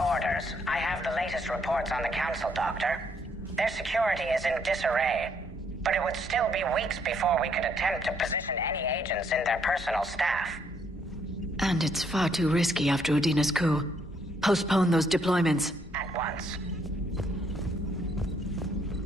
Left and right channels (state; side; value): normal; both; correlation 0.70